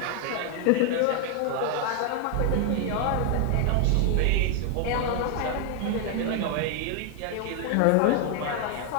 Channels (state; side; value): different; both; correlation 0.00